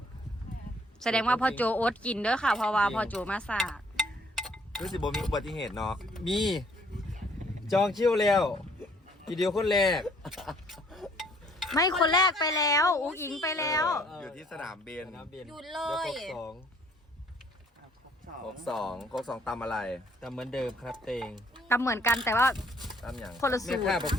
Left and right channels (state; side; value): normal; both; correlation 0.61